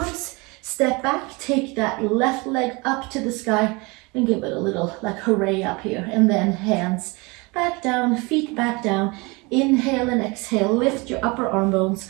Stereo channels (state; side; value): quieter; left; 26.7 dB